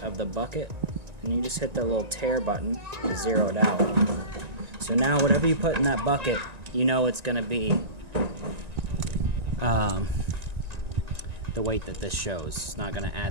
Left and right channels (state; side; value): late; left; 1.9 ms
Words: of the bucket, and you just hit the little tear button to zero it out. So now whatever you put in that bucket, you know it's gonna be the weight that this shows. It's not gonna